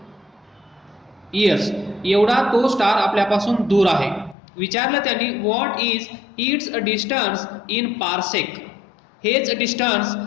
इयर्स एवढा तो स्टार आपल्यापासून दूर आहे. विचारलं त्यांनी what is it's distance in parsec. हेच डिस्टन्स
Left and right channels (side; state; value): right; drops out; at 4.4 s